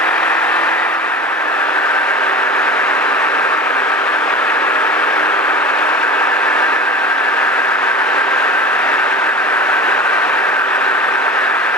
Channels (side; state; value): both; normal; correlation 0.34